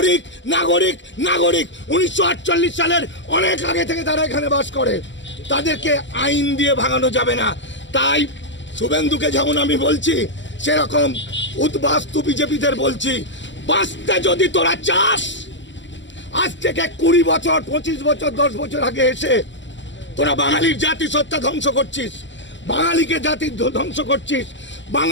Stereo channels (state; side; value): late; right; 0.54 ms